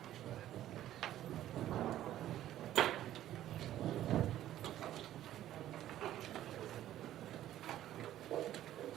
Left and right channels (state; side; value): quieter; left; 12.8 dB